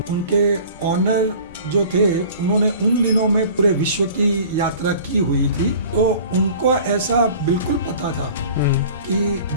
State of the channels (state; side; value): inverted; both; correlation -0.45